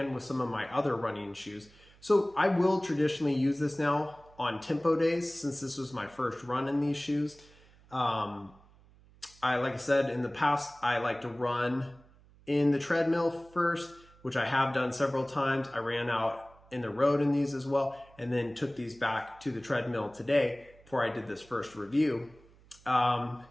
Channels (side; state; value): right; noise; hum, 27 dB below the sound